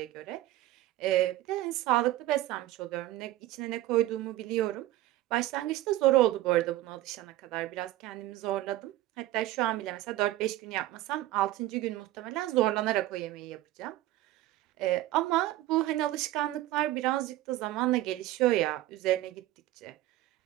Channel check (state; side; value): quieter; left; 15.7 dB